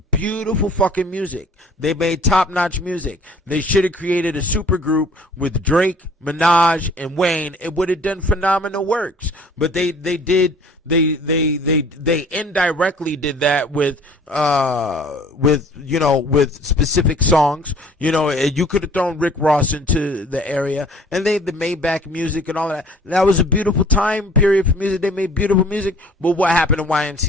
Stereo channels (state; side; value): normal; both; correlation 0.52